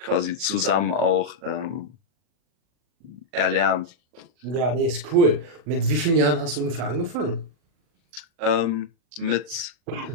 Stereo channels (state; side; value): late; left; 40 ms